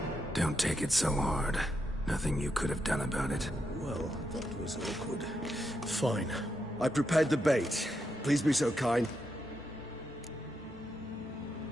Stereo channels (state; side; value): normal; both; correlation 0.83